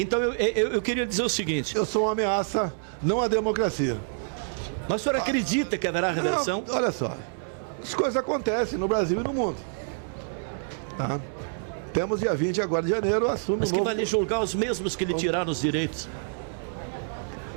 eu queria dizer o seguinte. Eu sou uma ameaça, não à democracia. Mas o senhor acredita que haverá reversão? Não, olha só, as coisas acontecem no Brasil e no mundo. Tá? Temos dia 20 agora de janeiro, assume Mas que vai lhe julgar os mesmos que lhe tiraram os direitos?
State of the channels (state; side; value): silent; left; 60 dB below the other